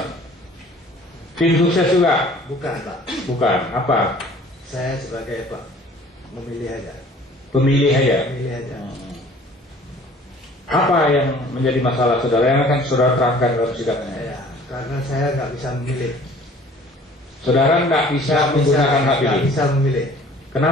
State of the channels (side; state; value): both; normal; correlation 0.51